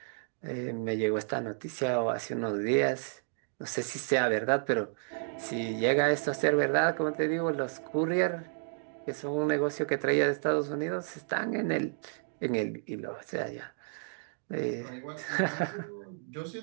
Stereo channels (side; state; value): left; silent; digital silence